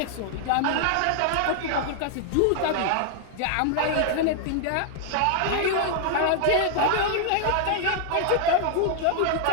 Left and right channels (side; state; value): both; different; correlation -0.01